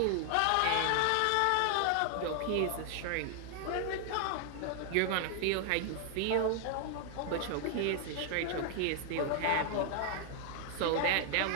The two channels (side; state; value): both; different; correlation 0.00